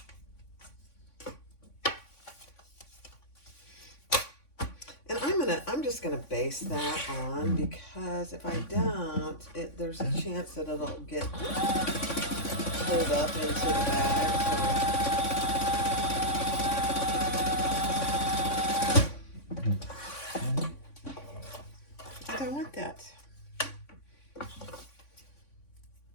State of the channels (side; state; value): right; late; 3.5 ms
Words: And I'm just gonna base that on, because if I don't, there's a chance that it'll get pulled up into the bag. So I don't want that.